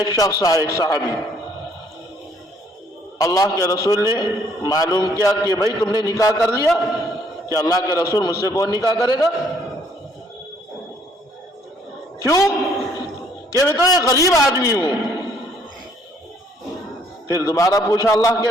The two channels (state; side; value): normal; both; correlation 0.64